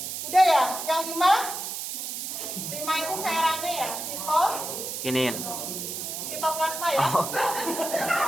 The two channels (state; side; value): noise; right; hiss, 5 dB below the sound